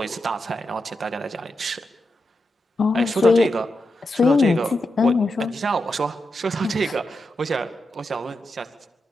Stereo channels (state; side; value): normal; both; correlation 0.87